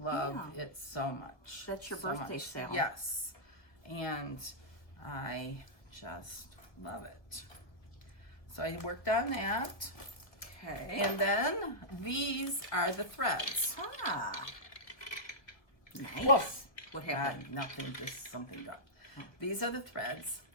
it so much. That's your birthday sale. Yes. And I just love it. So I worked on that. Okay. And then these are the threads. Nice. Whoa. What happened? Nothing, just something done. These are the threads.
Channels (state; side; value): late; right; 1.8 ms